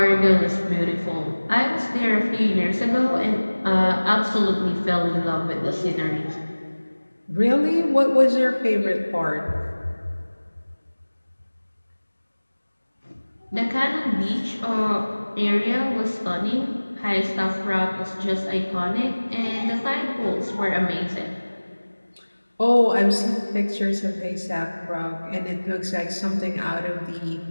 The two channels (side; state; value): both; inverted; correlation -1.00